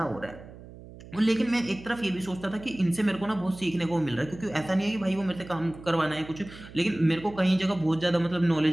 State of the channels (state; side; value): noise; right; hum, 17 dB below the sound